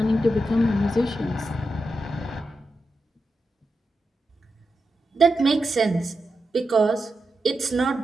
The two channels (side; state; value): both; normal; correlation 0.88